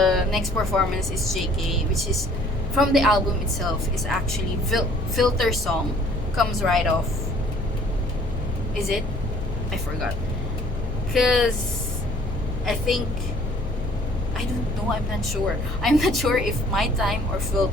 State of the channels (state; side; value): normal; both; correlation 0.56